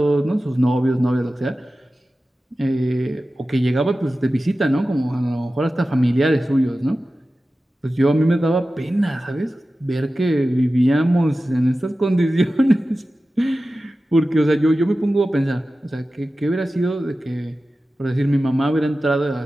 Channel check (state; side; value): normal; both; correlation 0.95